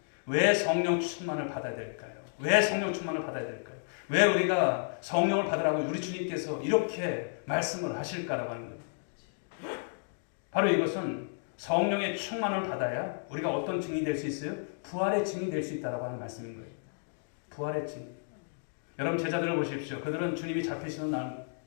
왜 성령 충만을 받아야 될까요? 왜 성령 충만을 받아야 될까요? 왜 우리가 성령을 받으라고 우리 주님께서 이렇게 말씀을 하실까라고 하는 거예요. 바로 이것은 성령의 충만을 받아야 우리가 어떤 증인이 될 수 있어요? 부활의 증인이 될 수 있다고 하는 말씀인 거예요. 부활의 증인. 여러분 제자들을 보십시오. 그들은 주님이 잡히시는 날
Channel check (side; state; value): right; silent; digital silence